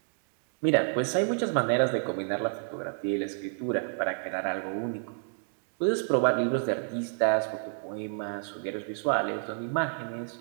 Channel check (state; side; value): silent; left; 58 dB below the other